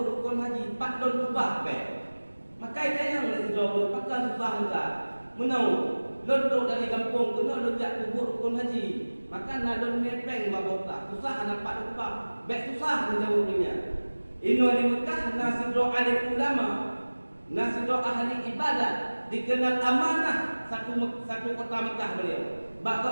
rukun haji 4 don kubah peng. Makai tayang le sidra orang pakai susah juga. Menau lontok dari kampung kena lonjak kubur rukun haji. Maka nak lon mepeng dua tak susah nampak kubah. Bek susah menjauh dunia. Ino di Mekah nasidra alim ulama, nasidra ahli ibadat, dikenal amanah satu kota Mekah beliau.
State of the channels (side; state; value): both; inverted; correlation -1.00